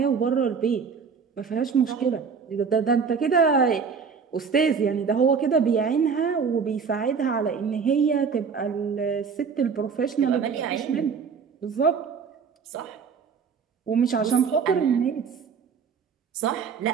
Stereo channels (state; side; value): quieter; left; 5.9 dB